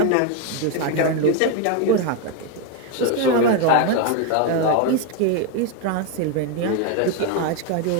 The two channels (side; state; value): both; different; correlation 0.01